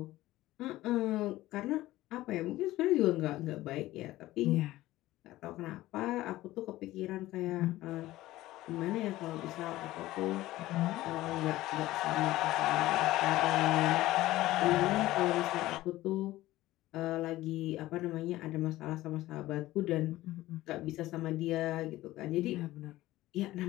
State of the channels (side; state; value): right; quieter; 16.6 dB